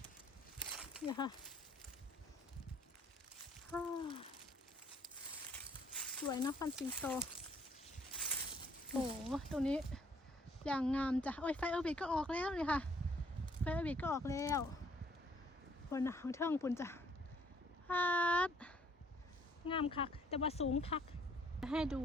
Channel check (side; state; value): both; normal; correlation 0.63